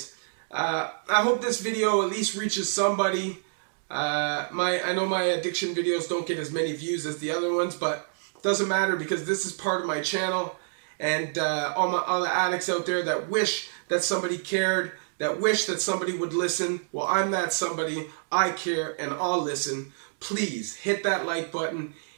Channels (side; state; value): left; silent; digital silence